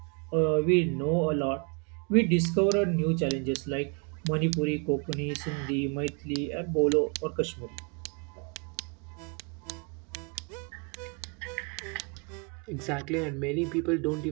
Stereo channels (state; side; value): quieter; left; 35.4 dB